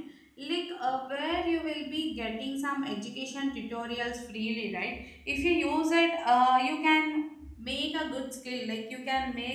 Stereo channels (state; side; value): identical; both; correlation 1.00